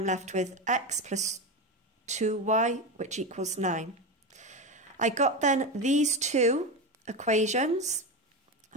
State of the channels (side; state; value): both; normal; correlation 0.18